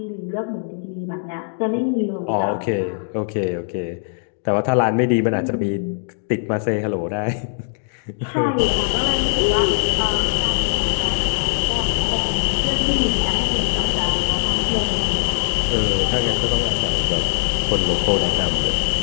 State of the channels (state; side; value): silent; right; digital silence